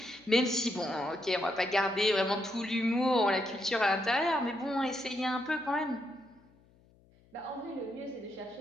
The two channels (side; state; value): left; noise; hum, 30 dB below the sound